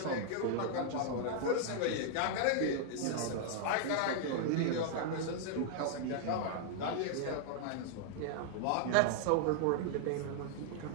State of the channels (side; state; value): both; different; correlation -0.01